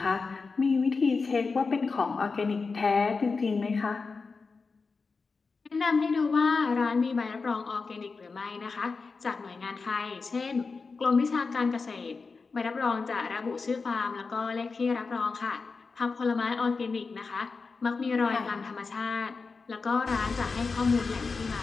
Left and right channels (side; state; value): right; quieter; 4.5 dB